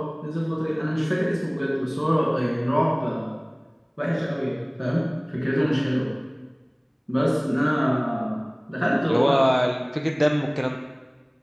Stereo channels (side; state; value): both; identical; correlation 1.00